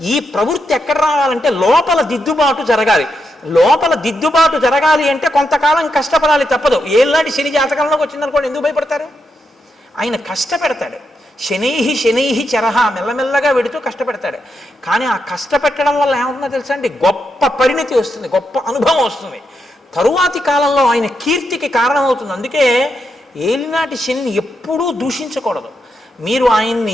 ఈ ప్రవృత్తి ఎక్కడ రావాలంటే లోపల దిద్దుబాటు జరగాలి. లోపల దిద్దుబాటు జరగాలి అంటే కొంతకాలం కష్టపడాలి, తప్పదు. ఏళ్ళనాటి శని జాతకంలోకి వచ్చిందనుకోండి, ఎందుకు భయపడతారు? ఆయన కష్టపెడతాడు. శనైహి చరహ, మెల్లమెల్లగా వెడుతూ కష్టపెడతాడు. కానీ ఆ కష్టపెట్టడం వల్ల ఏమవుతుందో తెలుసా అండి? గొప్ప పరిణితి వస్తుంది, గొప్ప అనుభవం వస్తుంది. తరువాతి కాలంలో ఆయన కీర్తికి కారణమవుతుంది. అందుకే ఏలినాటి శనిని ఎప్పుడూ దూషించకూడదు. మీరు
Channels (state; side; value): normal; both; correlation 0.83